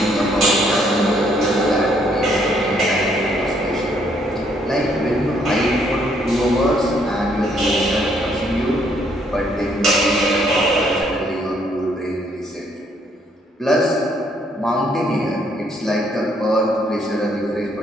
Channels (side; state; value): both; normal; correlation 0.69